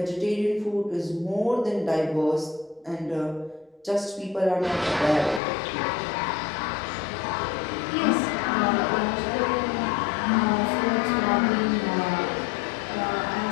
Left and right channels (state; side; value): drops out; right; at 5.4 s